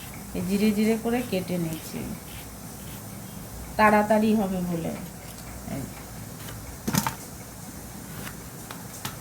এই জিরে জিরে করে কেটে নিচ্ছি, তাড়াতাড়ি হবে বলে।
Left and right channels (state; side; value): identical; both; correlation 1.00